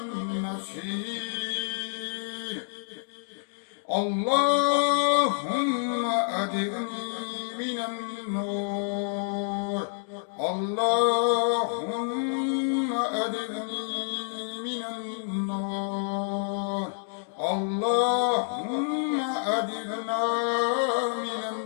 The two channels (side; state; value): right; silent; digital silence